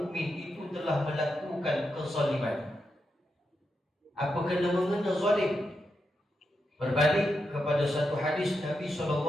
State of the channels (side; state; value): both; normal; correlation 0.86